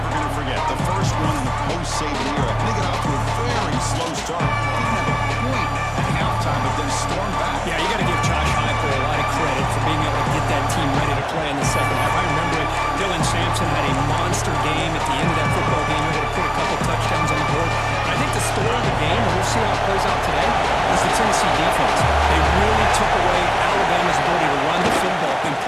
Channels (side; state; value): both; identical; correlation 1.00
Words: going to forget. The first one in the post-Saban era. They get off to a very slow start. Didn't have a point at halftime, but then stormed back. Yeah, you got to give Josh Heupel a lot of credit for being able to get that team ready to play in the second half. I remember it. Dylan Sampson had a monster game at the end of that football game. Able to put a couple touchdowns on the board. And I think the story of the game, and we'll see how it plays out today, is the Tennessee defense. They really took away Alabama's ability to run the football and